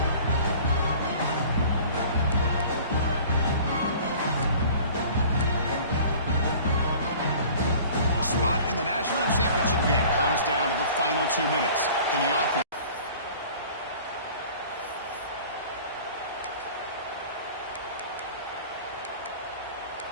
Spot in the national championship game comes down to the final 2 minutes. Can the offense...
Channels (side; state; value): both; inverted; correlation -0.46